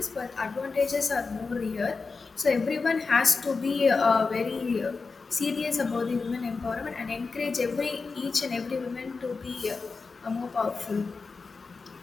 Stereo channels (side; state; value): right; quieter; 4.4 dB